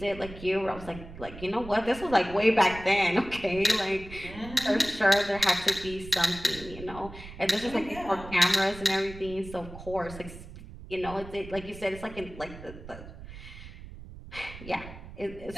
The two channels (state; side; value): noise; right; rumble, 14 dB below the sound